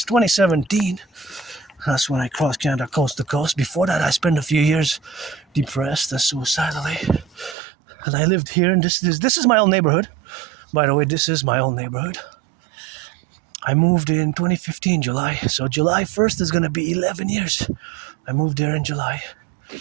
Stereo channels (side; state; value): left; drops out; at 7.6 s